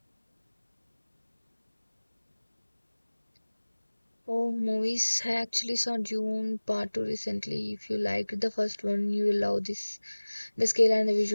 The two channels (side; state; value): both; inverted; correlation -1.00